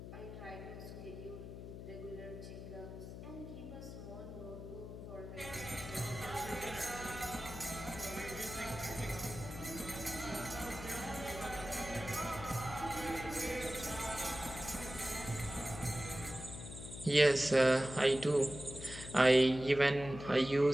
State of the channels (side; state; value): left; noise; hum, 10 dB below the sound